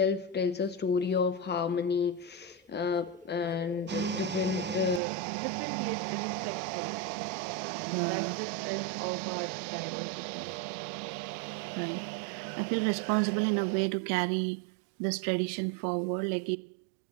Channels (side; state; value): left; drops out; at 5.0 s